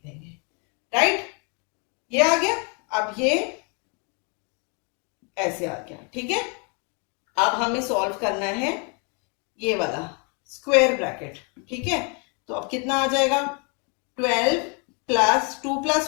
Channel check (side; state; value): right; quieter; 35.7 dB